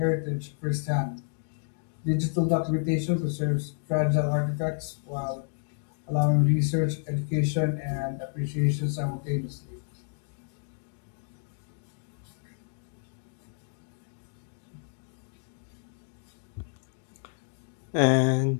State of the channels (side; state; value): right; silent; 58 dB below the other